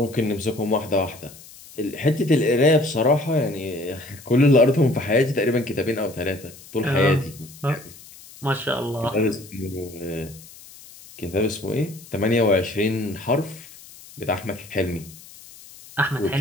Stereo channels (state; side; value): noise; left; hiss, 20 dB below the sound